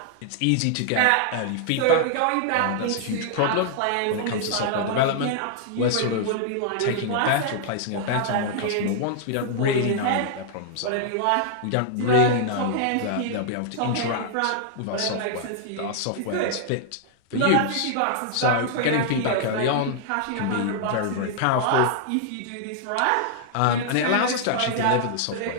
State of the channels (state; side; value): different; both; correlation -0.01